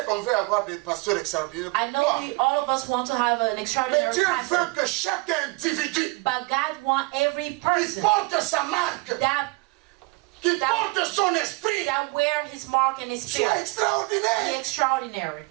qu'on veut avoir des pasteurs extraordinaires. I know Pourquoi? all of us want to have an Mais extraordinary Dieu veut pastor, que chaque individu but God wants every qui person porte sa marque, qui porte son esprit, that wear his mark and his soit spirit be extraordinaire. extraordinary.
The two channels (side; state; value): left; quieter; 25.1 dB